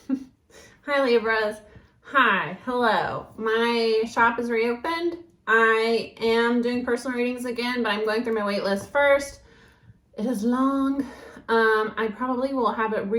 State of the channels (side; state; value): both; identical; correlation 1.00